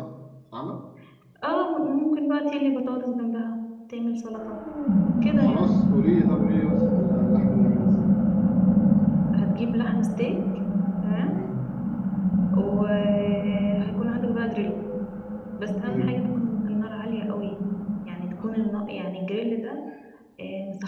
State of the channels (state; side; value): identical; both; correlation 1.00